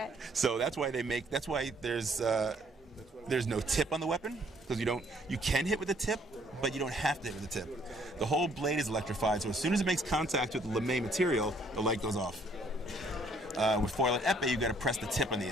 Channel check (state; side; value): normal; both; correlation 0.64